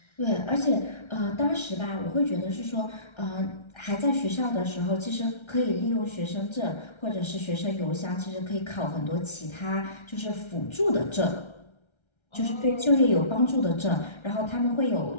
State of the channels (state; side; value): late; right; 1.3 ms